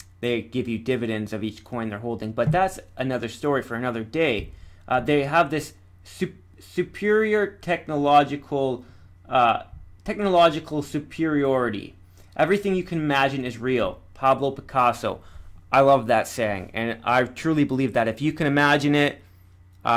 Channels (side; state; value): both; identical; correlation 1.00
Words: They give you dividends of each coin they're holding, but that's another story for another day. They have this superior technological superiority. Everything you can imagine is real. Pablo Picasso. I love that saying, and I truly believe that if you can imagine it,